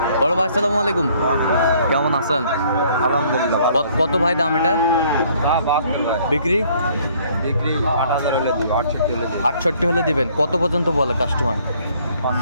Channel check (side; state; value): both; inverted; correlation -0.61